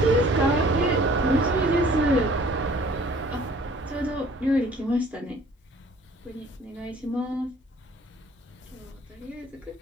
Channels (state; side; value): normal; both; correlation 0.53